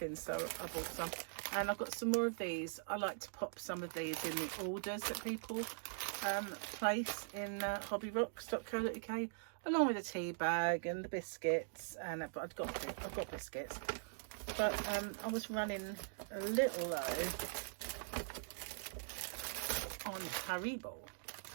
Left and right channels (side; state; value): left; silent; digital silence